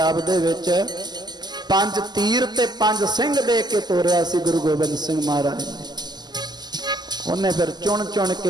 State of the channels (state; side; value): late; left; 0.21 ms